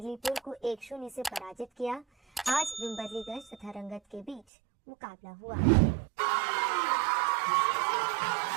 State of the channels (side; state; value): left; drops out; at 4.4 s